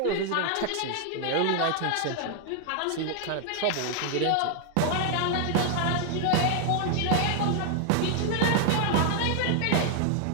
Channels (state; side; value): different; both; correlation 0.00